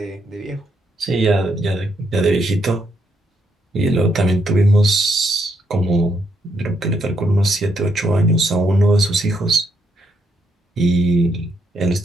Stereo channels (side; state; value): both; normal; correlation 0.76